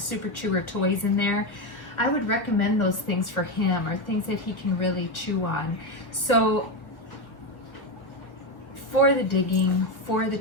Chewer toys in there. I would recommend those things for him, or things that he can really chew on. So for the digging, for the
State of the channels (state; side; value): late; right; 1.6 ms